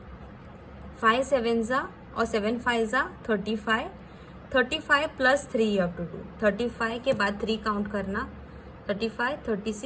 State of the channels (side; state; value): both; identical; correlation 1.00